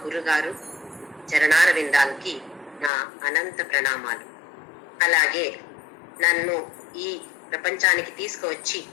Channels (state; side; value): drops out; right; at 2.9 s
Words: గురుగారు చరణారవిందాలకి నా అనంత ప్రణామాలు. అలాగే నన్ను ఈ ప్రపంచానికి తీసుకువచ్చి